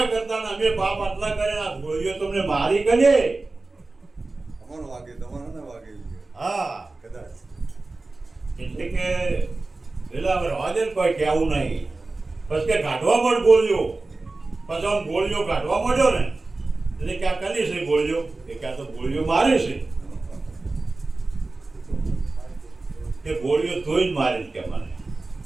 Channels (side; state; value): left; quieter; 3.3 dB